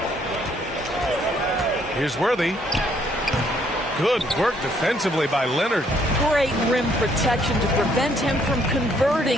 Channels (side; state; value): both; normal; correlation 0.67